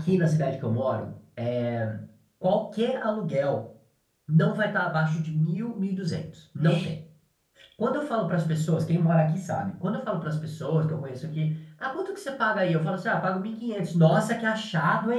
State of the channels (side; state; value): both; identical; correlation 1.00